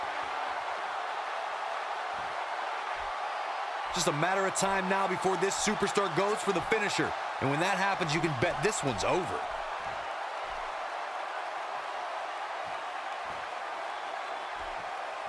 Just a matter of time now before this superstar goes for the finisher. And when that happens, you can bet this one's over.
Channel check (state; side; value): identical; both; correlation 1.00